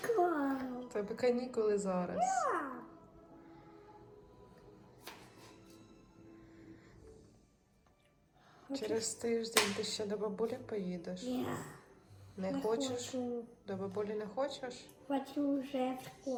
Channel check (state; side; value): identical; both; correlation 1.00